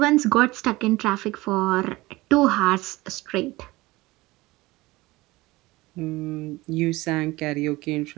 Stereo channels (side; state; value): left; quieter; 20.3 dB